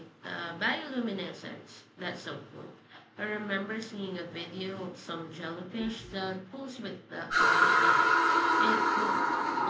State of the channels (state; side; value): identical; both; correlation 1.00